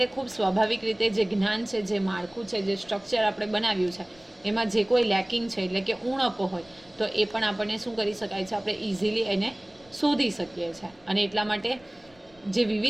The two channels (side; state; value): left; noise; rumble, 28 dB below the sound